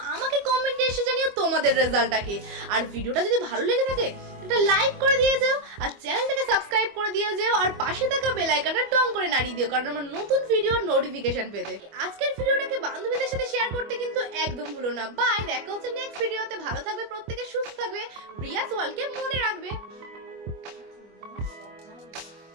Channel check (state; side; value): late; left; 25 ms